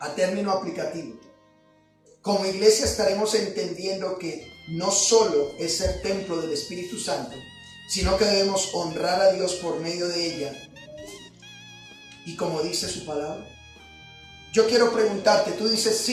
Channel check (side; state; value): both; identical; correlation 1.00